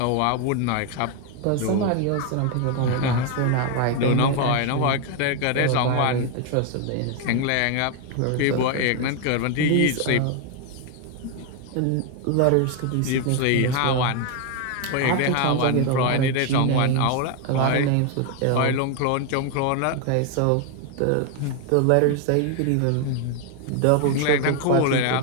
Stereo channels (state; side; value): different; both; correlation 0.01